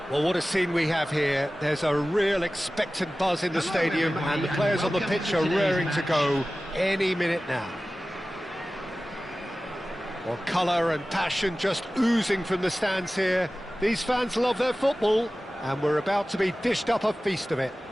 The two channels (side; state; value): both; normal; correlation 0.96